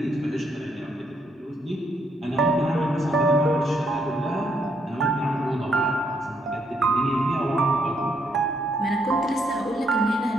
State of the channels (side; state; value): both; normal; correlation 0.73